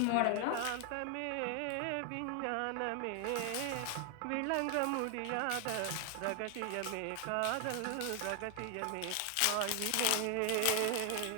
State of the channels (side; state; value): both; different; correlation 0.00